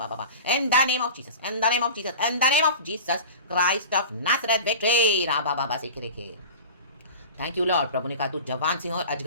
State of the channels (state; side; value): inverted; both; correlation -0.35